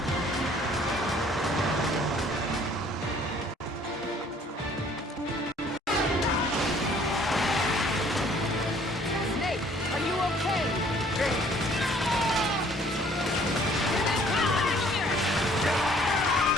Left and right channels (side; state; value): both; normal; correlation 0.58